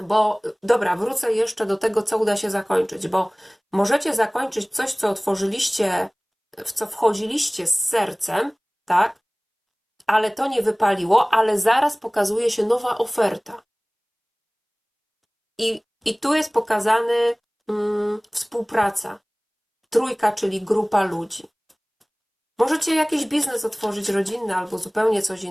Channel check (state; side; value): identical; both; correlation 1.00